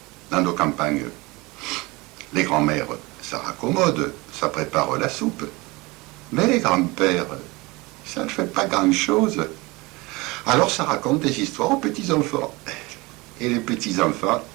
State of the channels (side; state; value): left; quieter; 23.7 dB